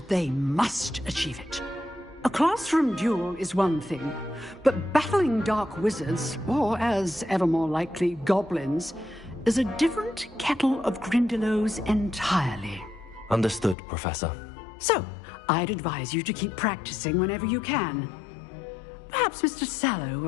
they must achieve it. A classroom duel is one thing, but battling dark wizards, or as ever more likely, goblins, is a different kettle of Grindylows entirely. Understood, Professor. So, I'd advise you to keep practicing whenever you can. Perhaps Mr. Sallow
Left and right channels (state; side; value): drops out; right; at 13.8 s